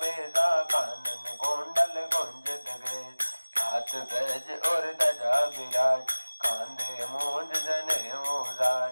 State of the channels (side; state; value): both; inverted; correlation -1.00